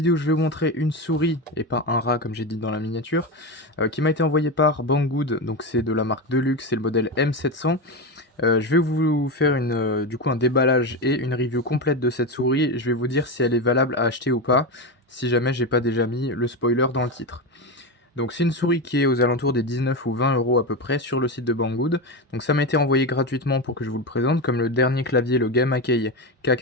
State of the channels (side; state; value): both; normal; correlation 0.16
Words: je vais vous montrer une souris, et pas un rat comme j'ai dit dans la miniature, qui m'a été envoyée par Banggood, donc c'est de la marque Deluxe, c'est le modèle M700. Je vais vous faire du coup un déballage et une review complète de cette souris. Je vais vous dire si elle est valable à acheter ou pas, si jamais j'ai pas déjà mis le spoiler dans le titre. Donc c'est une souris qui est aux alentours des 19 ou 20 euros à peu près sur le site de Banggood. Donc ça m'a été envoyé gratuitement pour que je vous le présente, comme le dernier clavier, le Gamakei